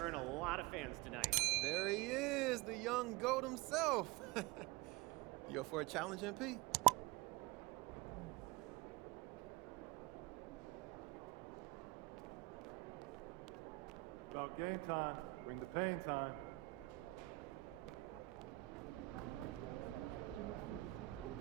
earn a lot of fans tonight. There he is, the young GOAT himself. You up for a challenge, MP? About game time. Bring the pain time.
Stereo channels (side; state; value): left; quieter; 21.1 dB